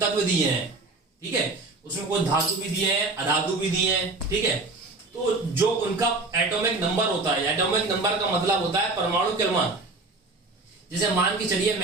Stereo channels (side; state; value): left; quieter; 3.3 dB